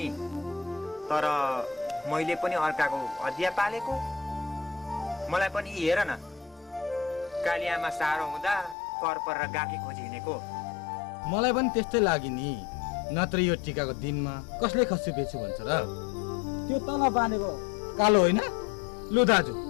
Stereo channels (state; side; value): drops out; right; at 8.8 s